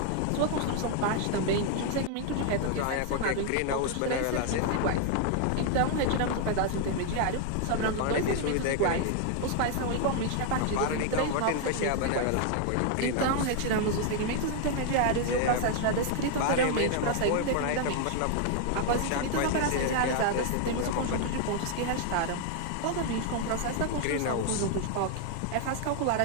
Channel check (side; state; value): both; different; correlation 0.00